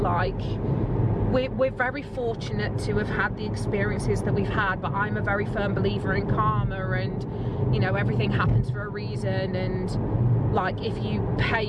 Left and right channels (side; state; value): both; identical; correlation 1.00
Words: we're very fortunate to have had the experiences that we've had, but I'm a very firm believer in karma, and you know, everything happens for a reason, and like, if you